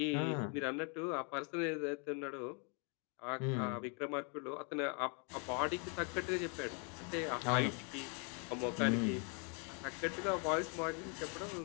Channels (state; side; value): quieter; right; 37.1 dB